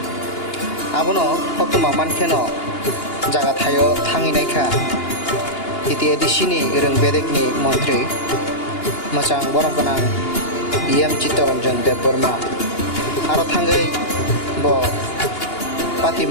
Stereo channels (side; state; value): right; late; 2.8 ms